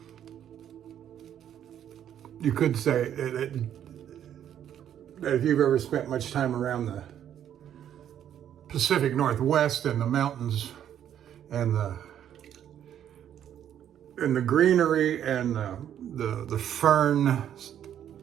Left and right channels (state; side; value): quieter; left; 10.1 dB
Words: You could say that if you've ever spent much time around the Pacific Northwest and the mountains and the greenery and the fern